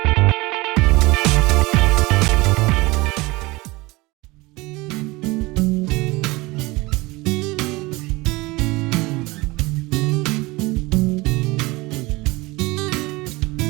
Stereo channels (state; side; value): quieter; left; 22.3 dB